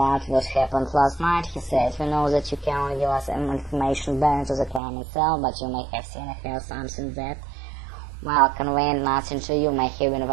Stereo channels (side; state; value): left; drops out; at 4.8 s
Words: what happened last night, he said. We know that you can only give us information bearing to the crime itself, but you may have seen or heard something that, while conveying nothing to you, may have been